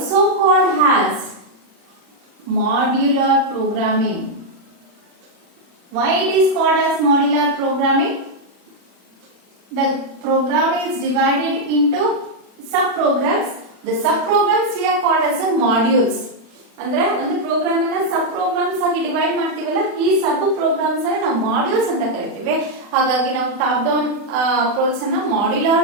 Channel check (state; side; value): late; left; 40 ms